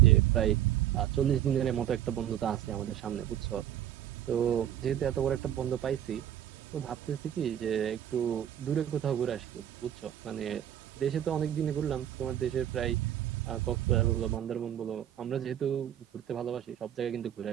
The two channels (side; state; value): left; quieter; 11.1 dB